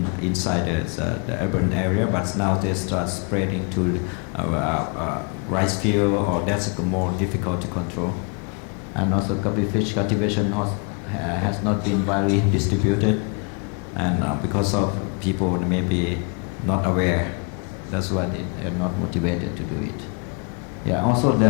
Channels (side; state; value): right; quieter; 36.3 dB